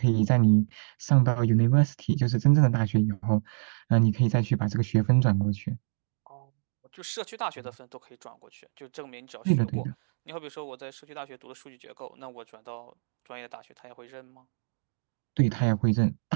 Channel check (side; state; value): left; silent; digital silence